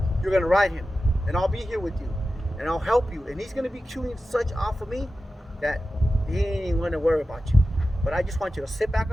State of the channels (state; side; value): normal; both; correlation 0.93